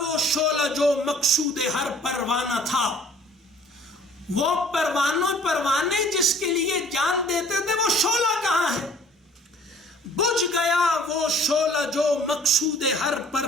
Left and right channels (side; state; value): both; normal; correlation 0.54